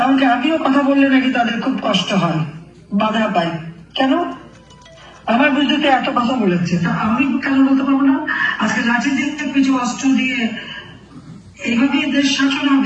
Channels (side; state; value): both; identical; correlation 1.00